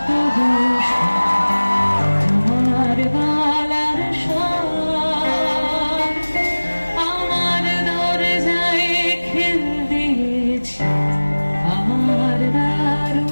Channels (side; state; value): both; inverted; correlation -1.00